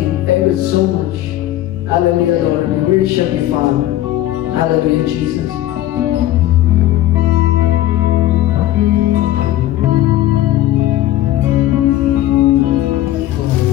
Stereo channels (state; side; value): quieter; right; 14.1 dB